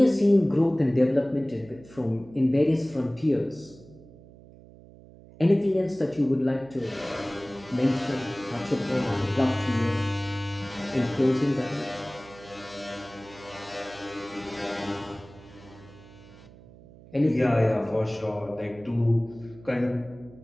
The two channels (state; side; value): noise; right; hum, 21 dB below the sound